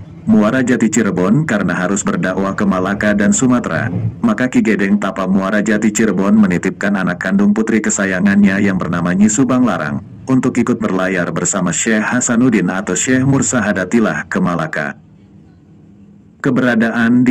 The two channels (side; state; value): both; identical; correlation 1.00